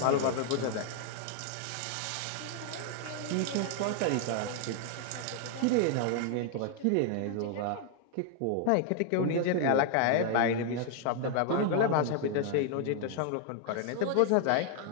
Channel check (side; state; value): both; different; correlation 0.00